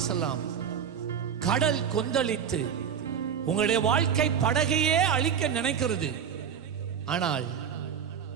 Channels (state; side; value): quieter; left; 7.8 dB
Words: கடல் கொந்தளித்து உங்களுடைய வாழ்க்கை படகையே அழிக்க நினைக்கிறது. ஆனால்